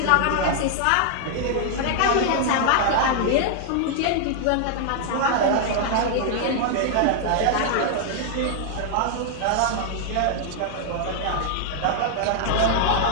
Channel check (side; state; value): both; different; correlation 0.00